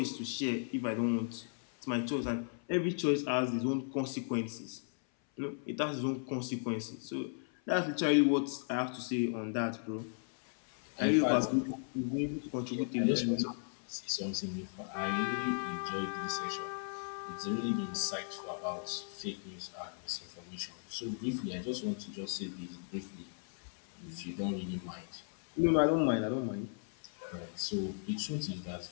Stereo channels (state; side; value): silent; right; 54 dB below the other